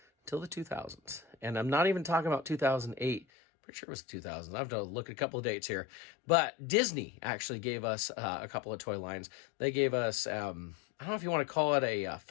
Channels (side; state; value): right; drops out; at 3.2 s